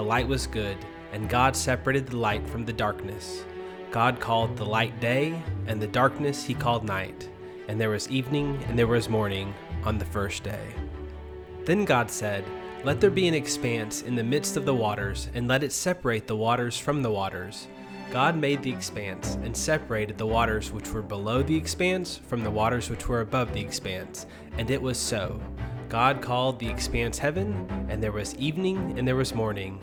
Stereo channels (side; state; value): both; identical; correlation 1.00